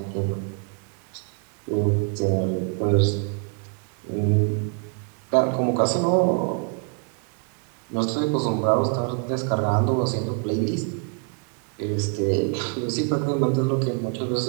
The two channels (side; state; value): left; quieter; 39.8 dB